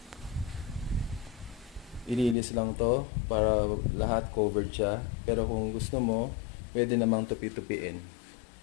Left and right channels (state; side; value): drops out; right; at 2.4 s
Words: ilinis lang to para lahat covered siya. Pero kung gusto mo, pwede namang tupi-tupiin.